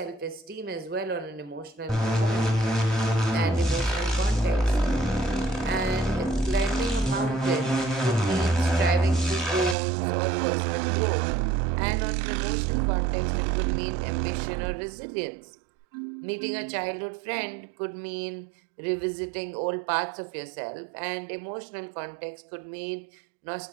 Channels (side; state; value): left; drops out; at 9.8 s